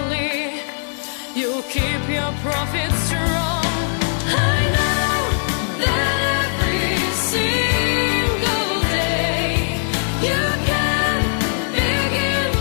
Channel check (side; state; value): right; silent; 66 dB below the other